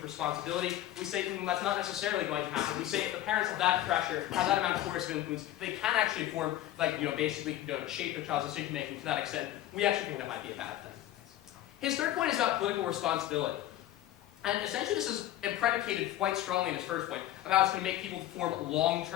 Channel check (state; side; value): quieter; right; 13.7 dB